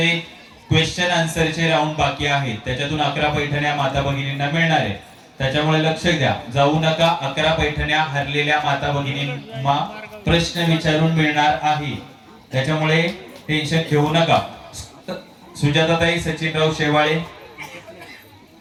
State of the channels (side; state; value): both; identical; correlation 1.00